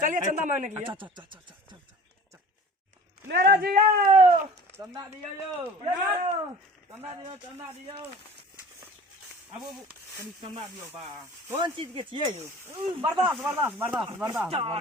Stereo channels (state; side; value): normal; both; correlation 0.43